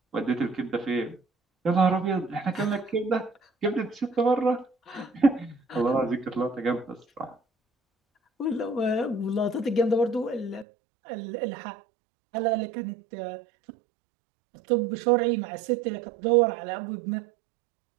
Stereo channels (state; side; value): drops out; left; at 10.7 s